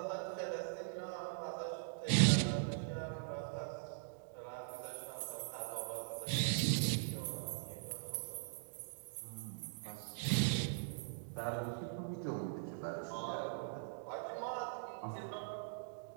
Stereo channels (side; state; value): left; silent; digital silence